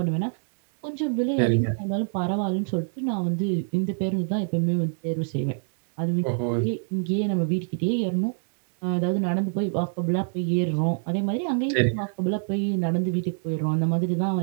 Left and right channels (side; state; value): left; silent; digital silence